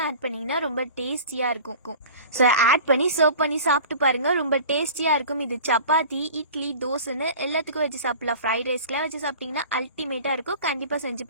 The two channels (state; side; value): inverted; both; correlation -0.40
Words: ஆட் பண்ணிங்கன்னா ரொம்ப டேஸ்டியாக இருக்கும். ஸோ ஆட் பண்ணி சர்வ் பண்ணி சாப்பிட்டு பாருங்கள், ரொம்ப டேஸ்டியாக இருக்கும். இது சப்பாத்தி, இட்லி, தோசைன்னு எல்லாத்துக்கும் வச்சு சாப்பிடலாம். ஃப்ரைட் ரைஸ்க்கெலாம் வச்சு சாப்பிட்டிங்கன்னா அல்டிமேட்டாக இருக்கும். கண்டிப்பாக செஞ்சு